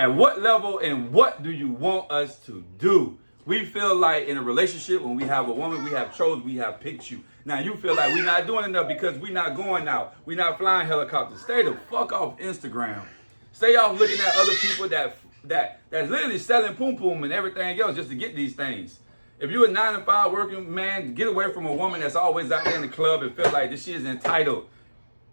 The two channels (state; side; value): inverted; both; correlation -1.00